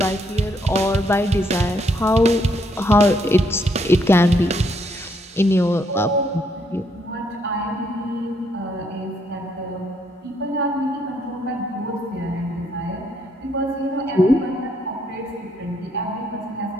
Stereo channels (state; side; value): normal; both; correlation 0.72